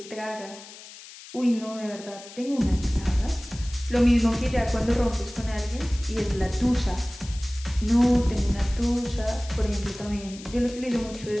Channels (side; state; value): left; noise; hiss, 17 dB below the sound